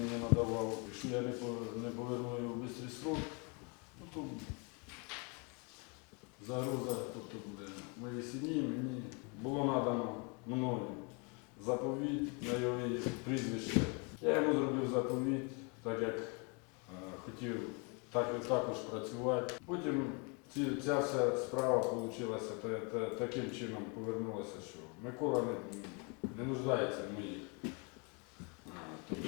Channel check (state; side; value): quieter; right; 33.5 dB